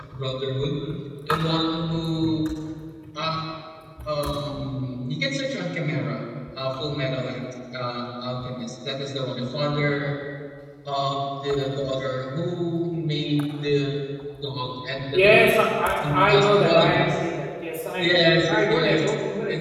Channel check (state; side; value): identical; both; correlation 1.00